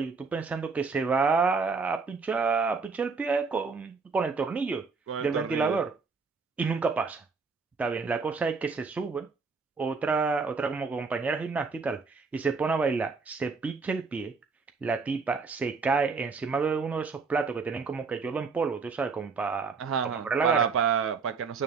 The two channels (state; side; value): quieter; left; 4.7 dB